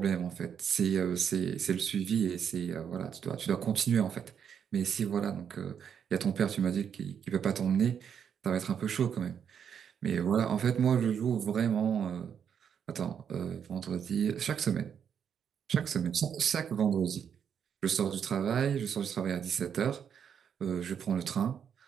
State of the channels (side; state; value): left; quieter; 7.9 dB